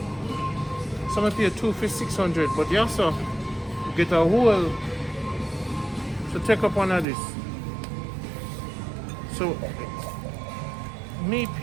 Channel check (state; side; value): drops out; left; at 7.1 s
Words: Some I pay two for 600, but you also get a whole. So take up one of this. So me